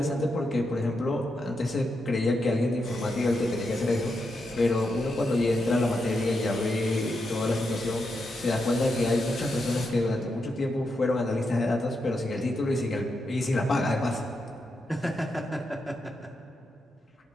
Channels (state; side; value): normal; both; correlation 0.85